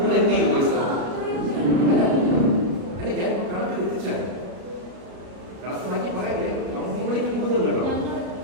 എന്ത് ചെയ്യും പൈസ? അല്ല ഞാൻ കണക്ക് എത്തിച്ചാൽ കണക്ക് മാറ്റി പറയല്ലേ, കംപ്ലീറ്റ് കൊടുക്കും കേട്ടോ.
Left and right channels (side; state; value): left; late; 33 ms